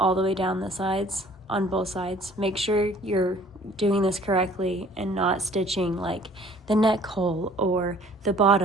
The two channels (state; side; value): normal; both; correlation 0.54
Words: the way down the sides, on both sides. Make sure you're doing this correctly and not stitching like the neck hole or the